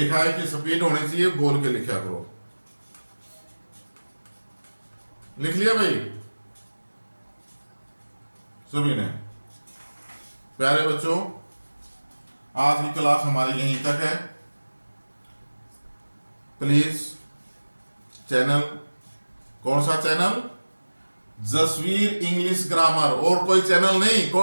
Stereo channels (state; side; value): inverted; both; correlation -1.00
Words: है कि स्पीड होनी चाहिए, बोल के लिखा करो। लिख लिया भाई सभी ने। प्यारे बच्चों, आज की क्लास हमारी यहीं तक है। प्लीज चैनल, कौन सा चैनल, जसवीर इंग्लिश ग्रामर, और कोई चैनल नहीं,